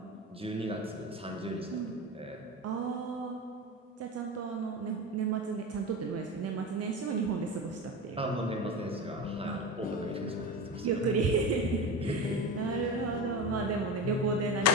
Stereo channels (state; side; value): normal; both; correlation 0.25